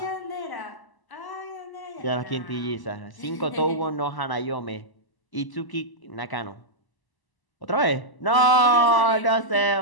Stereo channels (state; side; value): late; right; 1.0 ms